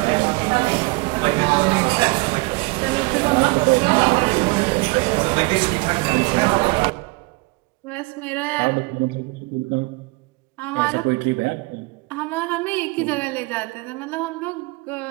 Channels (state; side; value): quieter; left; 26.2 dB